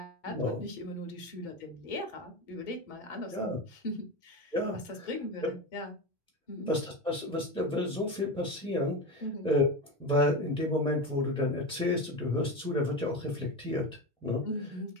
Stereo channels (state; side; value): normal; both; correlation 0.21